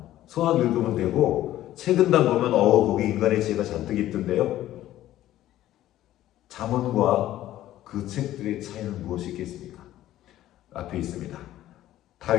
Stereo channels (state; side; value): quieter; right; 13.8 dB